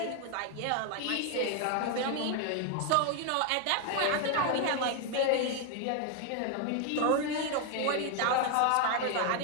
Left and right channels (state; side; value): different; both; correlation 0.01